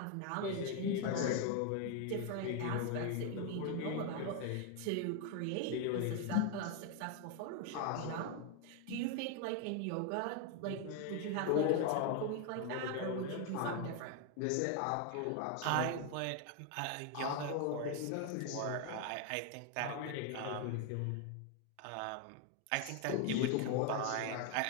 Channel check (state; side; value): different; both; correlation 0.01